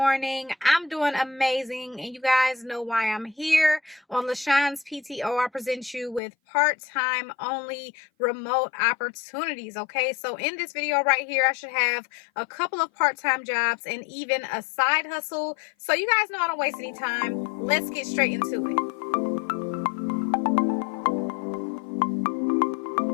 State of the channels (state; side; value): drops out; right; at 6.2 s